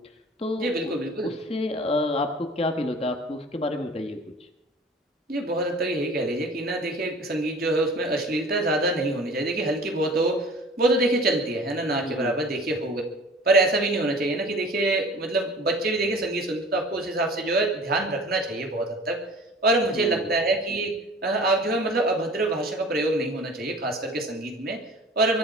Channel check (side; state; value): both; normal; correlation 0.44